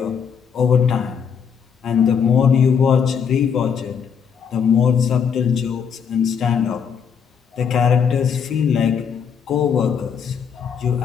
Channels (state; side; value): quieter; right; 7.0 dB